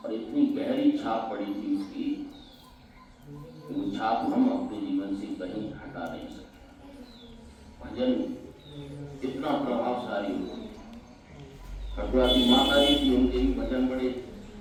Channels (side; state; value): both; identical; correlation 1.00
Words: और इतनी गहरी छाप पड़ी थी उसकी, वो छाप हम अपने जीवन से कहीं हटा नहीं सकते। भजन इतना प्रभावशाली हो। खटुआ की माता जी थी, उनके भी भजन बड़े